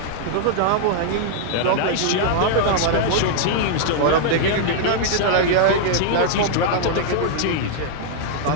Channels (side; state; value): both; different; correlation -0.01